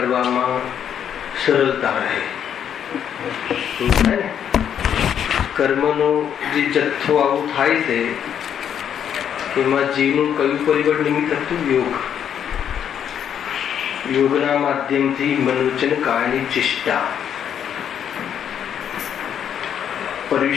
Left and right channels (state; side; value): quieter; right; 8.9 dB